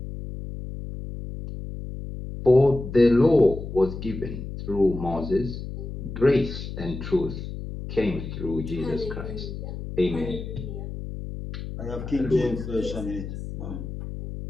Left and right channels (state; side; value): noise; left; hum, 8 dB below the sound